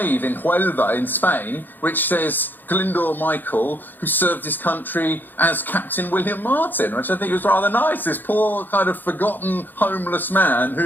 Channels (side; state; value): right; late; 0.089 ms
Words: in Huelva in Spain, which says Glyndwr Michael, who served his country as Captain William Martin, which I think was rather nice. This poor kind of forgotten homeless man